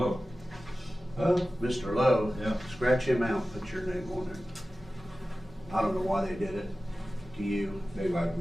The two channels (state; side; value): normal; both; correlation 0.95